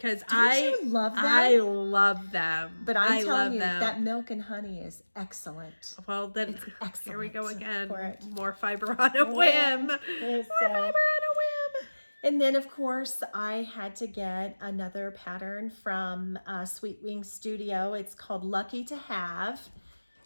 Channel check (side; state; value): both; inverted; correlation -1.00